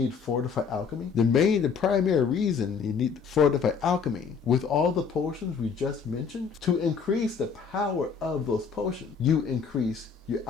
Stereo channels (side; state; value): right; quieter; 6.0 dB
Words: Fortify Alchemy? The primary reason you need Fortify Alchemy with all the potions we just mentioned, to increase the power of those potions, you increase your